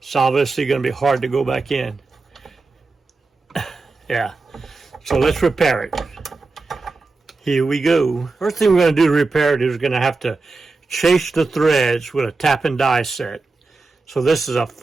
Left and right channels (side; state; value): left; quieter; 3.7 dB